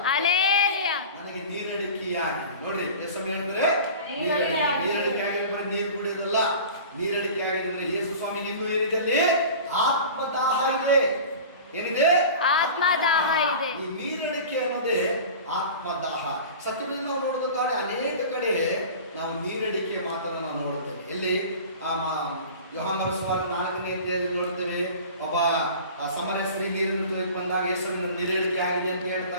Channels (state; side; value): inverted; both; correlation -0.38